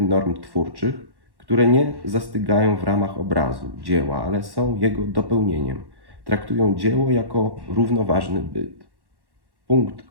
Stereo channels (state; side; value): late; left; 1.1 ms